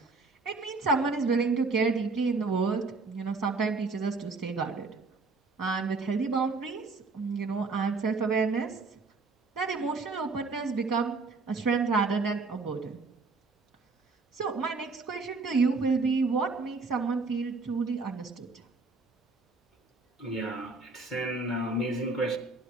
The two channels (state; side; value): quieter; left; 3.9 dB